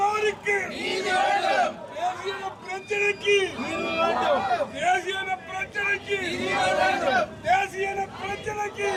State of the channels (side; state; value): both; identical; correlation 1.00